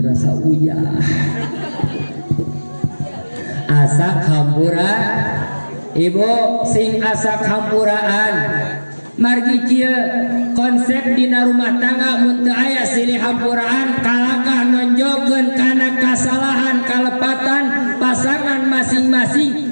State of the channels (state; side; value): inverted; both; correlation -1.00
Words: rasa uyah asak hampura ibu sing asak hampuraan margi kieu konsep dina rumah tangga mun teu aya silih hampuraan kalakah nonjogkeun kana kasalahan kalepatan pasangan